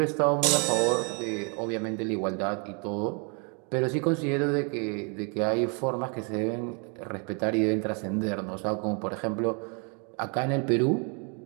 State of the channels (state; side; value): quieter; left; 37.1 dB